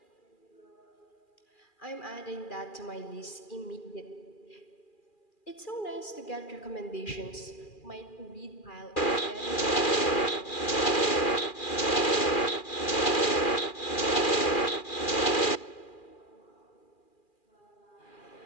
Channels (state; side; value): late; right; 2.4 ms